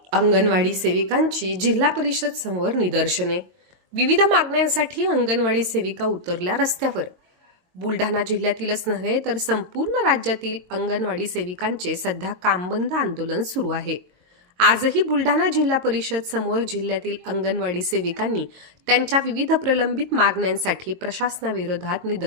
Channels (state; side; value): late; left; 22 ms